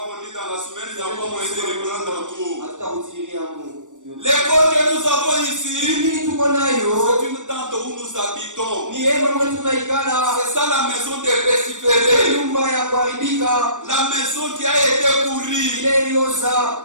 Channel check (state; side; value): late; left; 0.86 ms